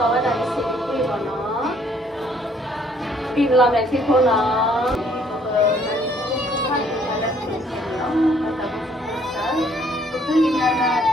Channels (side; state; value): both; normal; correlation 0.63